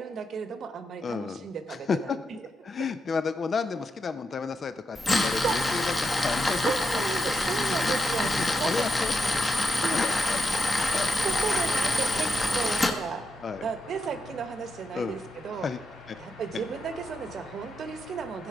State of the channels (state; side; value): normal; both; correlation 0.84